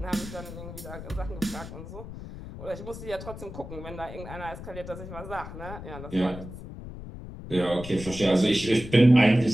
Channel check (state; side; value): noise; left; rumble, 11 dB below the sound